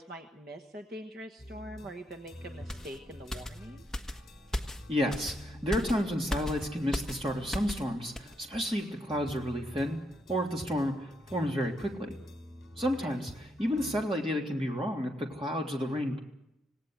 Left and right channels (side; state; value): both; normal; correlation 0.78